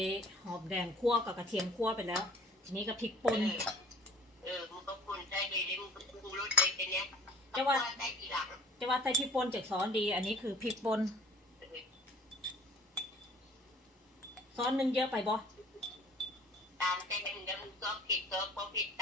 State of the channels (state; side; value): normal; both; correlation 0.50